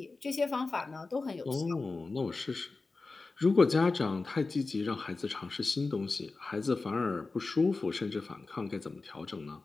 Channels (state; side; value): quieter; right; 3.8 dB